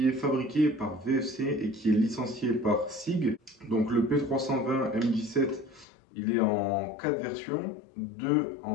est fabriqué par VFC et qui est licencié par SIG. Donc le P320 M17, il est en 4 versions, 2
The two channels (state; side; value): drops out; right; at 5.9 s